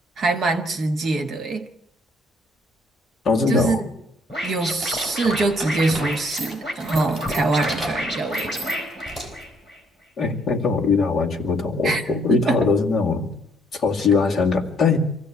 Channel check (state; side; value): normal; both; correlation 0.66